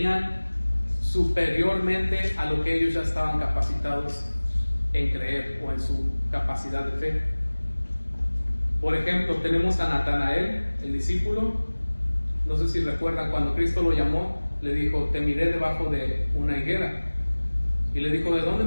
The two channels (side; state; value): both; inverted; correlation -1.00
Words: superiormente a lo que ellos ya estaban capacitados en creer o en su capacidad de fe. Por ejemplo, tenemos a Natanael, el discípulo. No sé si recuerdan, cuando Cristo lo llamó, le dijo: te miré debajo de una higuera. Y le dijo: ¿de dónde